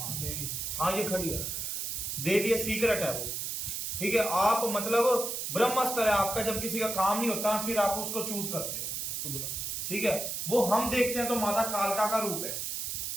हाँ ये खड़ी है देवी, है सीक्रेट है वो, ठीक है। आप मतलब ब्रह्मास्त्र है आपका, जब किसी का काम नहीं होता फिर आप उसको चूज करते हो, इसको बुला, ठीक है। वो हम देखते हैं तो माता कालका का रूप है,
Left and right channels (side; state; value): right; noise; hiss, 3 dB below the sound